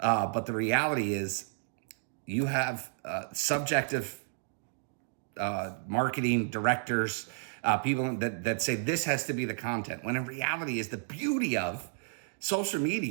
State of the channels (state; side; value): silent; left; digital silence